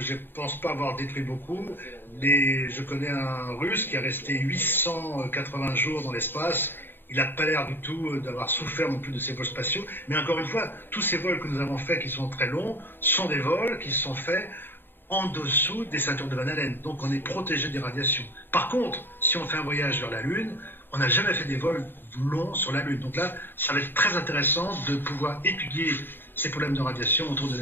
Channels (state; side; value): late; right; 0.098 ms